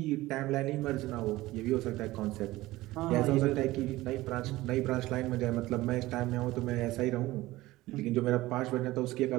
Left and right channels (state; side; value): quieter; left; 18.0 dB